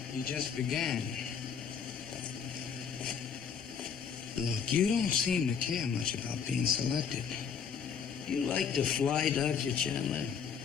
You just began. Look, you don't seem to care much about being selected. You like to fly, Dr. Chandler?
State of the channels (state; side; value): quieter; right; 6.9 dB